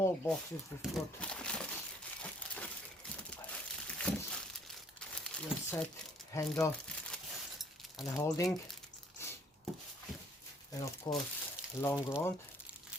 boxes we've got your set handle and a holding, and of course long rod.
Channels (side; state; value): both; normal; correlation 0.61